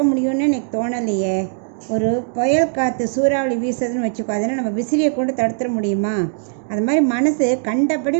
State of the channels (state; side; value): silent; left; digital silence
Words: முடியும்னு எனக்கு தோணலையே. ஒரு புயல் காற்று சூறாவளி வீசுறதுன்னு வச்சுக்கோ, அதனால் நம்ம விசிறியை கொண்டு தடுத்துட முடியுமா? அது மாதிரி மனசு கண்டபடி